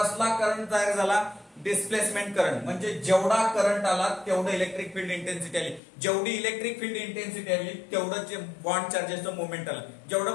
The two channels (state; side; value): drops out; right; at 5.8 s